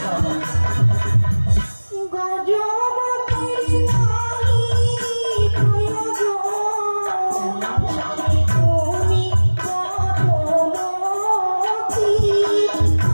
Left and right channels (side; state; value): both; inverted; correlation -1.00